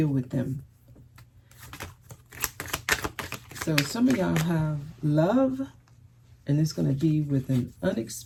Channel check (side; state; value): both; identical; correlation 1.00